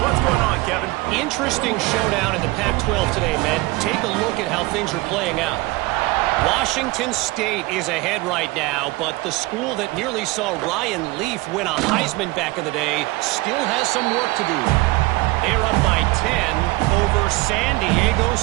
going on, Kevin? Interesting showdown in the Pac-12 today, man. Take a look at how things are playing out. Washington State is ahead right now, but the school that nearly saw Ryan Leaf win a Heisman back in the day still has some work to do. They're up by 10 over San Diego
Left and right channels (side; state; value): left; quieter; 21.7 dB